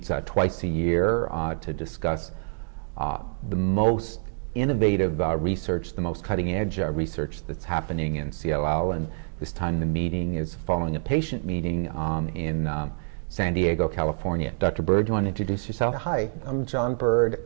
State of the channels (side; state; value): left; silent; digital silence